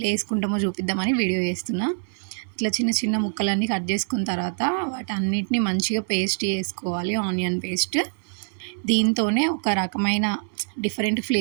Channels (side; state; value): left; silent; digital silence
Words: వేసుకుంటామో చూపిద్దామని వీడియో చేస్తున్నా. ఇట్లా చిన్న చిన్న ముక్కలన్నీ కట్ చేసుకున్న తర్వాత వాటన్నిటిని మంచిగా పేస్ట్ చేసుకోవాలి, ఆనియన్ పేస్ట్. దీంతోనే ఒక రకమైన డిఫరెంట్